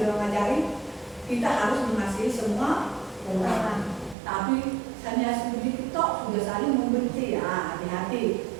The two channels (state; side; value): drops out; left; at 4.2 s